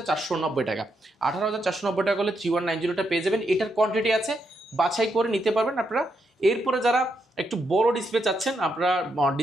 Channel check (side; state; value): both; normal; correlation 0.80